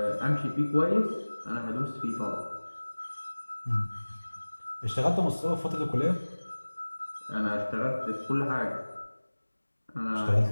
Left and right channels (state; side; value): inverted; both; correlation -1.00